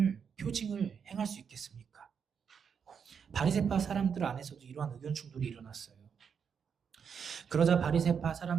행할 수 있겠습니까? 바리새파 사람들 안에서도 이러한 의견 충돌이 일어났어요. 그러자 바리새파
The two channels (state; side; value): quieter; left; 6.9 dB